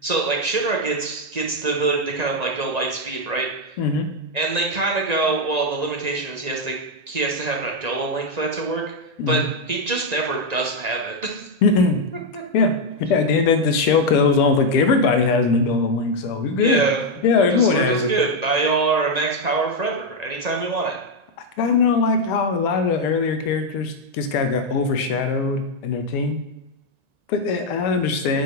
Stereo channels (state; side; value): late; left; 1.9 ms